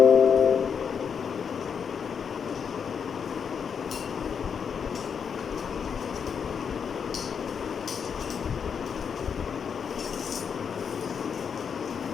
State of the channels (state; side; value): quieter; right; 6.8 dB